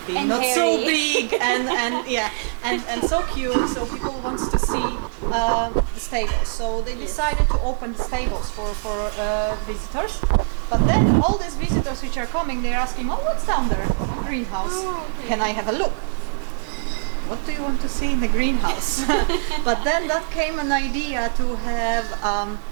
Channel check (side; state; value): left; silent; digital silence